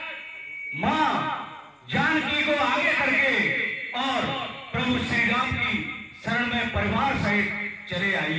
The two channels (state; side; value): identical; both; correlation 1.00